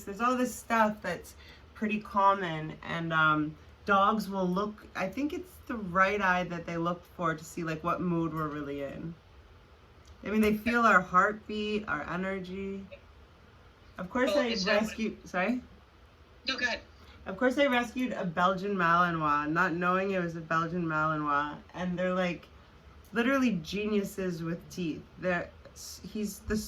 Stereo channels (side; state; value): both; identical; correlation 1.00